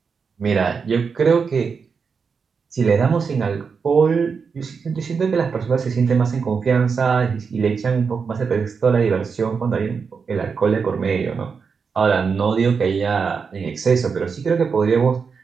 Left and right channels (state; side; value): quieter; left; 5.6 dB